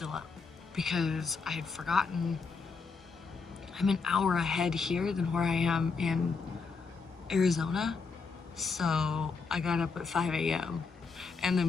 up because I had forgotten I'm an hour ahead here than where I am in Arizona. So I got up at 5 a.m. and the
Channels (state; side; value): quieter; right; 4.7 dB